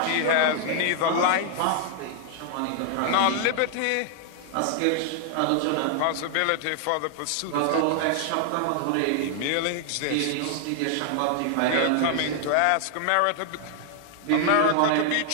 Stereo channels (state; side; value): different; both; correlation 0.00